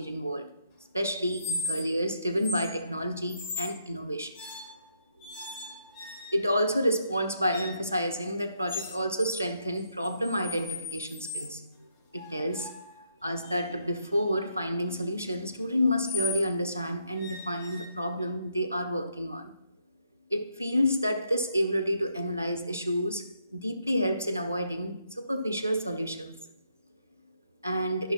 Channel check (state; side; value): inverted; both; correlation -0.75